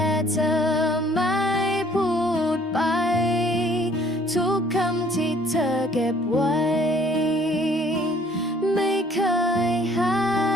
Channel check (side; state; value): both; normal; correlation 0.58